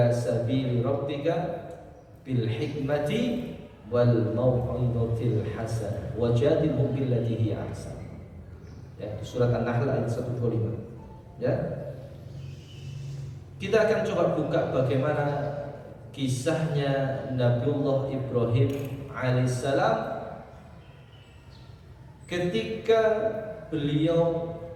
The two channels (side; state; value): both; identical; correlation 1.00